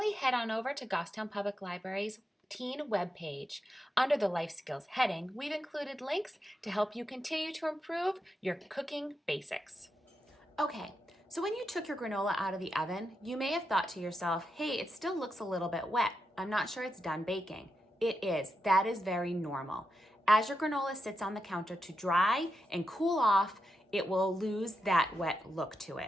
head on over to Goffstown Public Library's teen webpage. Under the Life Skills heading, we've included links to help you continue to improve your cooking basics. Okay, so when you took your granola out of the oven, you may have thought to yourself, hey, it still looks a little bit wet. I'm not sure it's done baking. It is. That is very normal. As your granola sits on the counter to dry and cool off, it will lose that wet look to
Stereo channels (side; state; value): both; normal; correlation 0.86